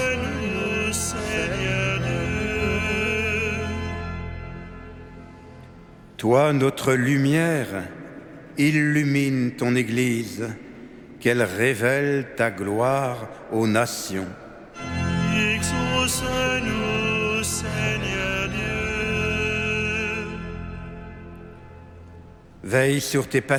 Seigneur Dieu. Toi, notre lumière, illumine ton Église, qu'elle révèle ta gloire aux nations. Exauce-nous, Seigneur Dieu. Veille sur tes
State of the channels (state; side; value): identical; both; correlation 1.00